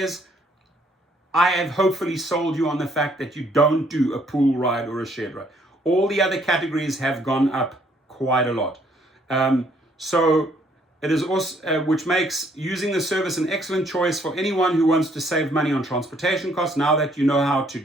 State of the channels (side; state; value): both; normal; correlation 0.66